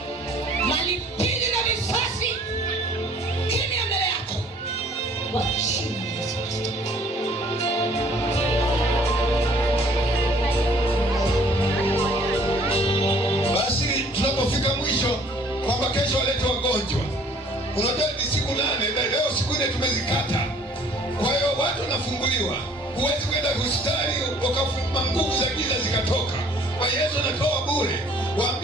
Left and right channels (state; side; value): normal; both; correlation 0.56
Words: Malipili na visasi kimya mbele yako kwa jina la Yesu Kristo. Basi tunapofika mwisho kwamba kesho walete wagonjwa, unajua ni siku 8 na leo siku 4 tumezikata. Kwa hiyo watu wanafunguliwa. Huwezi kwenda hospitali ukafuma nguvu za giza zikatoka. Kwa Yesu anatoa bure.